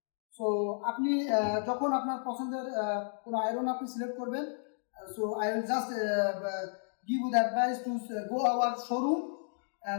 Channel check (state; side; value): silent; right; digital silence